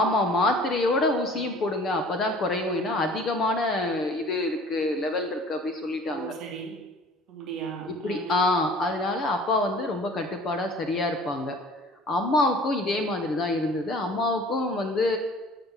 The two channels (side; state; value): both; normal; correlation 0.48